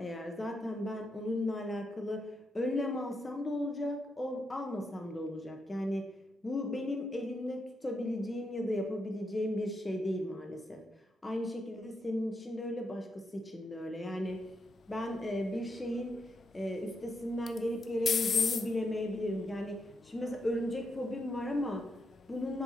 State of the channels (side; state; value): both; normal; correlation 0.82